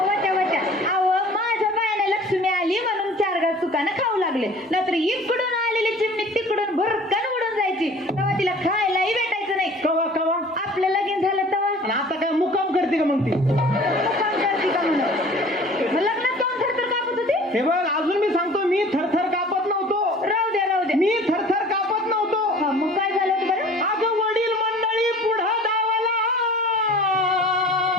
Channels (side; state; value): both; normal; correlation 0.47